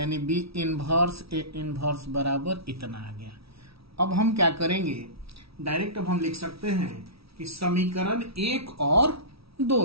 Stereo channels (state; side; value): late; left; 0.76 ms